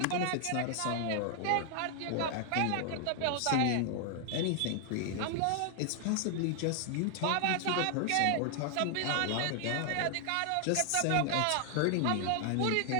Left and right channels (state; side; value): different; both; correlation 0.00